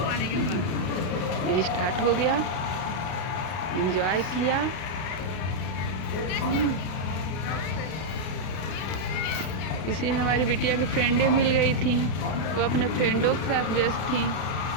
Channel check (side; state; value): right; late; 32 ms